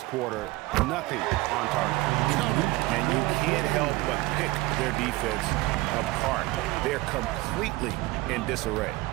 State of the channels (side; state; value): left; quieter; 20.1 dB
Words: quarter. Nothing on target. And you can't help but pick their defense apart. They're completely in disarray.